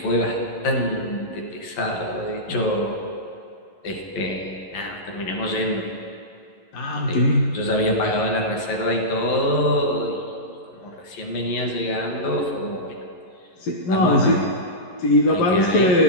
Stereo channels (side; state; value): right; late; 11 ms